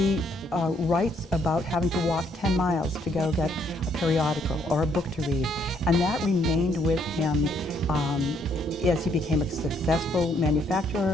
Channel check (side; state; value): both; normal; correlation 0.69